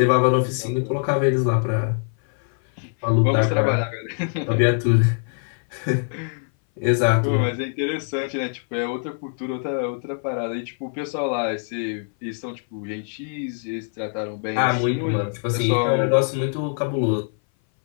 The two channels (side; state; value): right; silent; 59 dB below the other